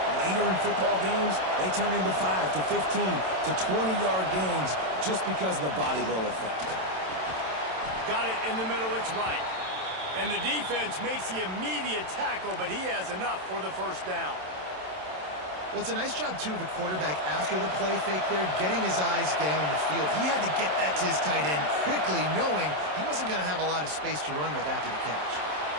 later in football games, they turn into 5 to 15 to 20-yard gains just because of the body blow effect. Got it in the middle. It's right. And the defense makes the immediate tackle, but he has enough for the first down. Well, it's a nice job, too, of the quarterback after the play fake there, getting his eyes down the field. He had to get that to his tight end quickly, knowing he wasn't going to have a lot of space to run with after the catch.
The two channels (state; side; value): late; left; 27 ms